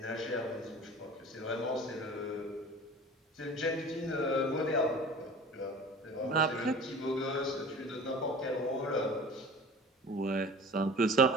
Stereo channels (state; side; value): normal; both; correlation 0.41